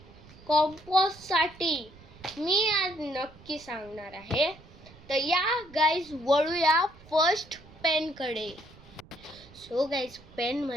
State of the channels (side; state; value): right; noise; rumble, 22 dB below the sound